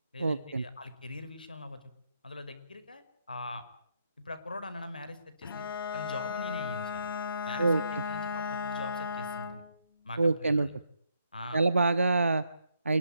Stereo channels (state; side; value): inverted; both; correlation -0.76